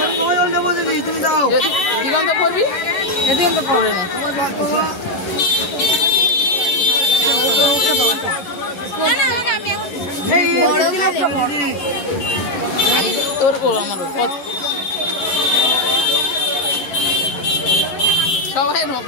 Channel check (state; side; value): late; right; 11 ms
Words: দিগন্ত পড়বি, দিগন্ত পড়ে না তোর আমার সবাই